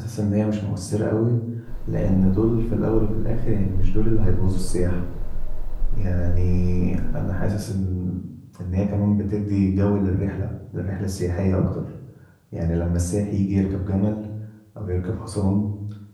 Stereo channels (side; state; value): both; identical; correlation 1.00